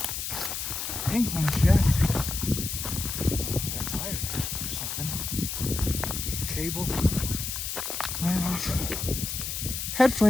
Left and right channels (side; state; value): left; noise; hiss, 4 dB below the sound